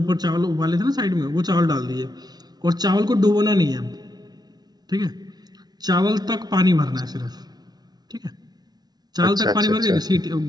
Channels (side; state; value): left; late; 0.19 ms